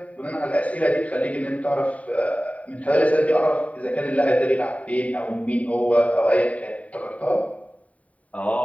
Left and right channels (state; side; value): late; right; 0.068 ms